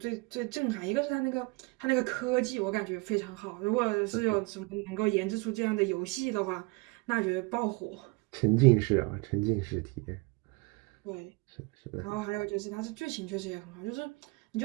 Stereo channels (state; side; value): quieter; left; 26.9 dB